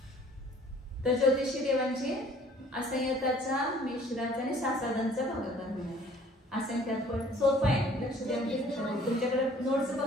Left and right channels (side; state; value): both; normal; correlation 0.54